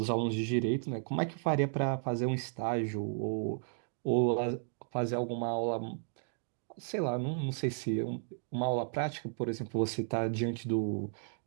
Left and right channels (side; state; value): left; silent; digital silence